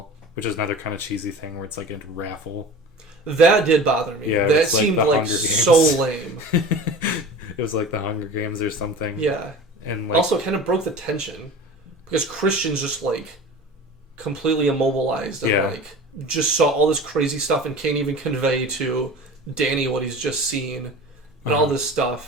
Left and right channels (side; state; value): both; normal; correlation 0.37